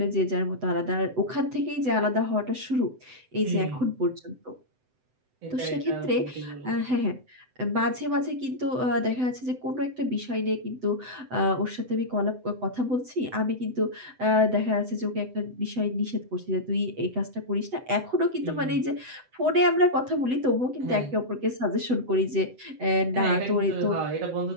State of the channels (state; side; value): late; left; 7.9 ms